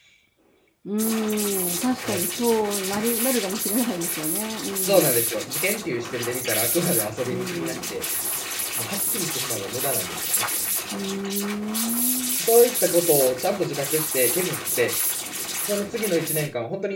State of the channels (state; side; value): identical; both; correlation 1.00